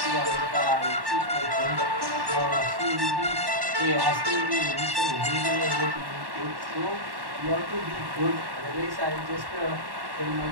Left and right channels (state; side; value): late; left; 1.1 ms